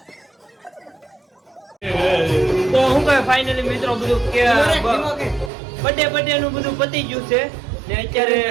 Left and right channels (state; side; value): drops out; left; at 5.5 s